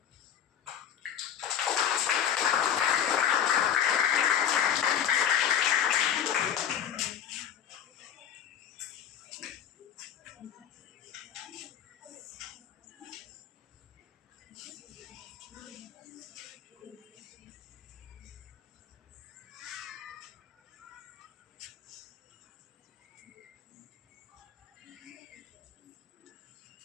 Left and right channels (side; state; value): right; quieter; 9.1 dB